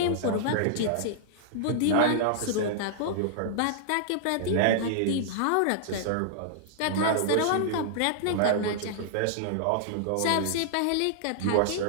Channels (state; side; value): different; both; correlation -0.01